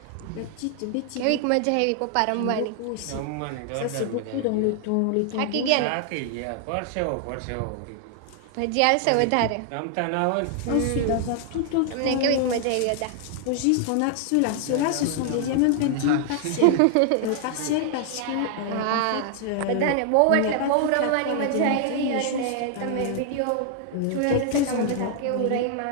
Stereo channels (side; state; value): both; different; correlation 0.00